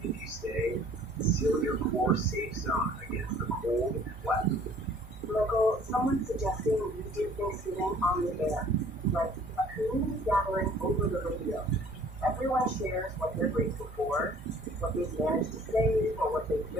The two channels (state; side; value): normal; both; correlation 0.54